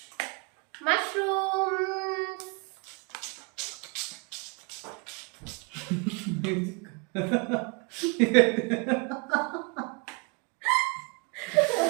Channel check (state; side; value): quieter; left; 32.3 dB